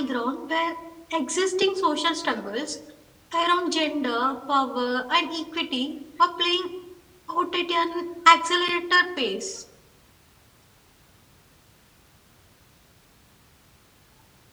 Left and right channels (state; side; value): identical; both; correlation 1.00